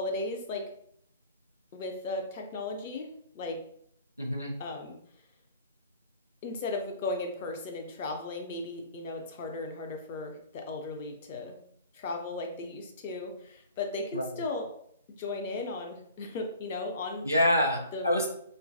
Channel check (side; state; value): both; inverted; correlation -0.48